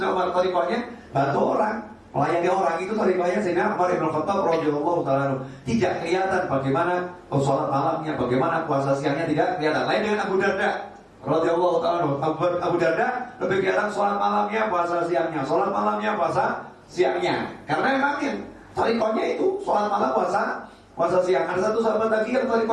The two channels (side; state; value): both; identical; correlation 1.00